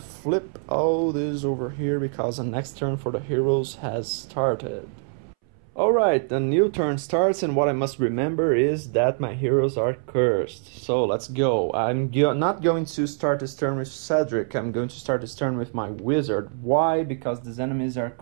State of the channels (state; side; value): silent; left; 62 dB below the other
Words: all this over here because the next turn for the heroes has started. Alright, the new turn starts, and what I must remember is that my heroes are cursed. So let's go. I'm not going to start this turn with Cedric. I'm going to start this turn with my wizard. Why? Because these enemies are